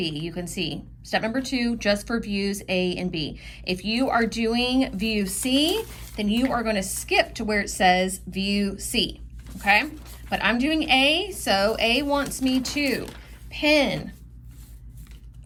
You can see step number 2, just for views A and B. If you are doing view C, then you are going to skip to where it says view C, okay? But I'm doing A, so A wants me to pin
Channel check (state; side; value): identical; both; correlation 1.00